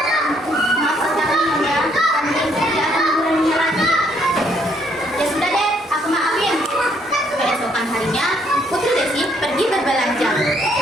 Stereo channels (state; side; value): normal; both; correlation 0.69